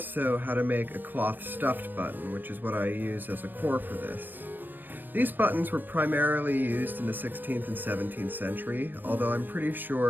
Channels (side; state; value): left; late; 0.092 ms